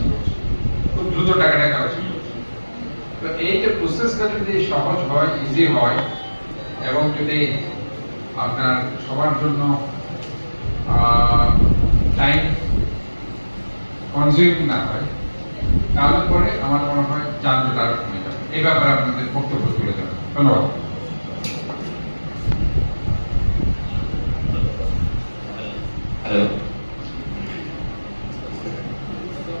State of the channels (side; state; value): both; inverted; correlation -1.00